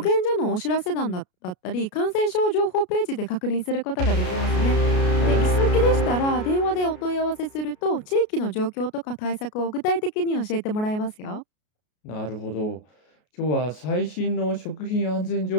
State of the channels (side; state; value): right; late; 33 ms